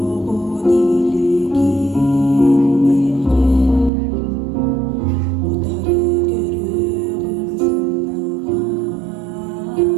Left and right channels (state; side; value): drops out; left; at 3.9 s